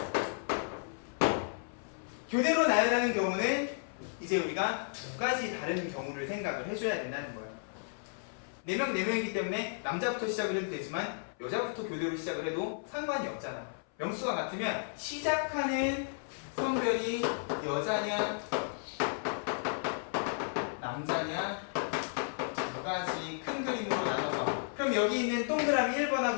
교대로 나열하는 경우는 이제 우리가 2가지 다른 경우를 생각을 해줘야 된다는 거예요. 4명, 4명이기 때문에 남자부터 시작을 해도 되지만 여자부터 교대로 시작을 해도 상관이 없잖아. 명수가 같으면 시작하는 성별이 여자냐 남자냐 2가지 큰 그림으로 나눠서 그럼 여기 있는 동그라미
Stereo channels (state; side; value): silent; right; 55 dB below the other